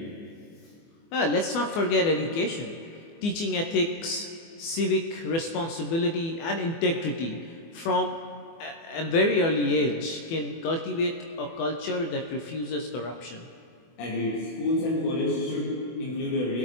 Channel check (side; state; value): right; late; 24 ms